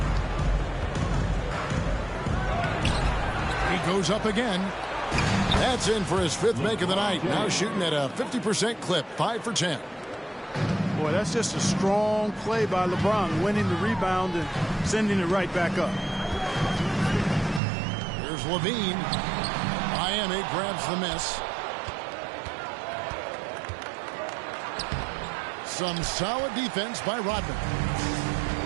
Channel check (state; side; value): drops out; left; at 17.6 s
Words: He goes up again. That's in for his 5th make of the night. Now shooting at a 50% clip. 5 for 10. Boy, that's just a strong play by LeBron, winning the rebound and sending it right back up. Here's Levine. Miami grabs the miss. Some solid defense by Rodman.